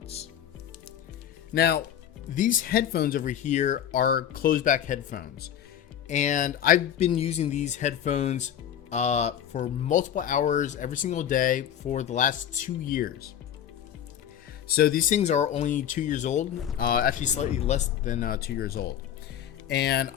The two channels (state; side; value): quieter; right; 9.9 dB